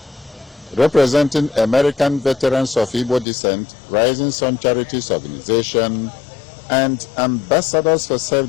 representing American veterans of Igbo descent, Rising Sun Charities Organization, and Ambassadors for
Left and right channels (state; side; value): drops out; right; at 3.2 s